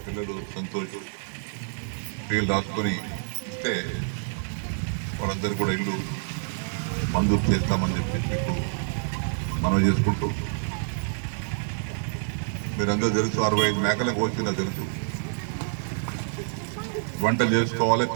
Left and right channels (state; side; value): silent; left; digital silence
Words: పిల్లలు సంతోష్ పేర్లు రాసుకొని ఇస్తే వాళ్ళందరూ కూడా ఇల్లు మంజూరు చేస్తామని చెప్పి మీకు మనం చేసుకుంటూ మీరందరూ తెలుసు 65 మేకలకు వచ్చిందో తెలుసు. వంటలు చేసుకోవాలి,